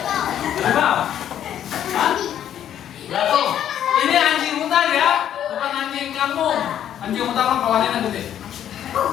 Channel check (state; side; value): quieter; right; 10.4 dB